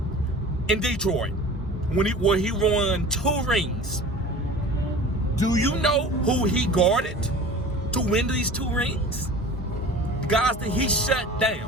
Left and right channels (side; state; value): both; normal; correlation 0.40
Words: in Detroit, where he won 2 rings. Do you know who he guarded to win these 2 rings? Guys that he shut